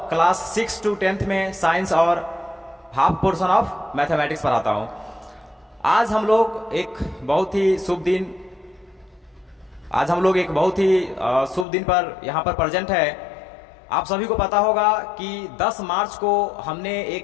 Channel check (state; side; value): drops out; right; at 11.7 s